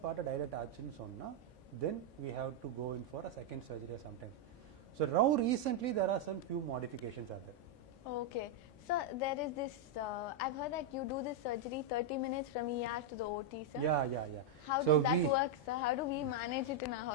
பார்ட்டை டைலேட் ஆச்சுன்னு சொன்னால் then we have to go in for a second surgery sometimes so now recently there are some few modifications are there. Okay. So there is this, I've heard that you do this surgery 30 minutes from ER to the OT, sir. Yeah. How So does that work, sir? How do we manage it in our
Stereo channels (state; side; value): normal; both; correlation -0.01